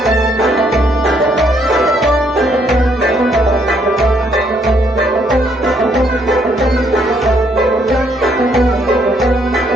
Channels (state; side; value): normal; both; correlation 0.70